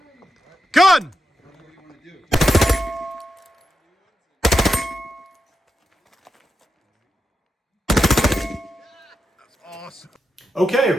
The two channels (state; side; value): normal; both; correlation 0.87